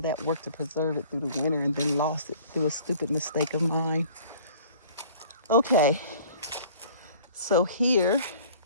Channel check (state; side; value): inverted; both; correlation -0.50